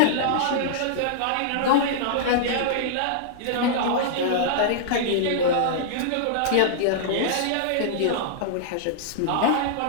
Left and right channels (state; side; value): different; both; correlation -0.01